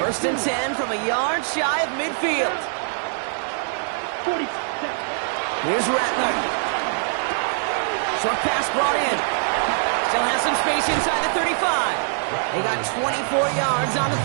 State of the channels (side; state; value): left; silent; digital silence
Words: 1st and 10 from a yard shy of midfield. Here's Rattler. Short pass brought in. Still has some space inside the 35. They got 24 yards on the